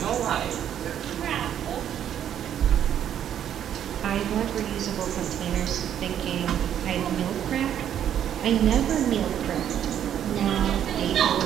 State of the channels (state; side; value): quieter; left; 9.9 dB